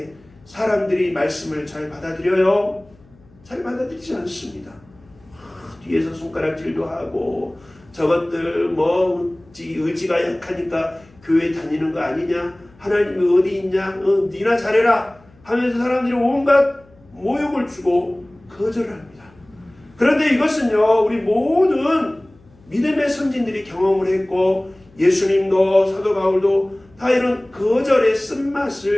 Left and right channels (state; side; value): noise; left; hum, 28 dB below the sound